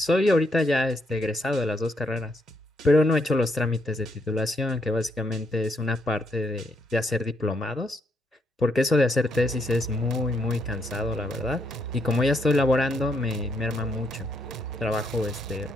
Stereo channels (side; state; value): both; normal; correlation 0.75